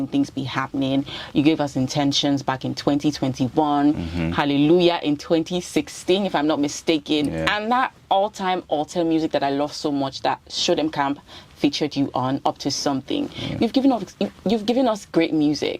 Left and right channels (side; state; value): both; identical; correlation 1.00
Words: things be happening. You gave us Intentions back in 2021, Hallelujah in 2016, if I'm not mistaken. Yeah. And that all-time altar music that I love so much that Show Them Camp featured you on, Up to Something. Yeah. You've given us great